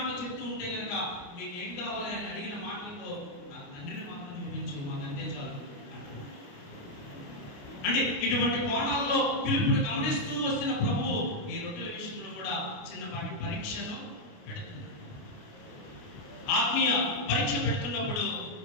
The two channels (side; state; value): right; late; 28 ms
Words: చెప్తూ ఉంటే కనుక, మీకు ఏం కావాలి అని అడిగిన మాటలతో నాకు తండ్రిని మాత్రం చూపించు, మాకు అంతే చాలు అంటే ఇటువంటి కోణాల్లో పిలుపుని గమనిస్తూ వస్తున్న ప్రభువు ఈ రొట్టెల విషయంలో కూడా చిన్నపాటి పరీక్షను పెడుతున్నాడు. ఆత్మీయ పరీక్ష పెడుతున్నప్పుడు